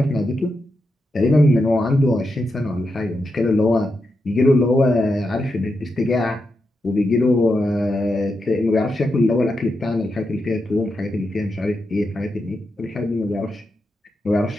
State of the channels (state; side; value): normal; both; correlation 0.86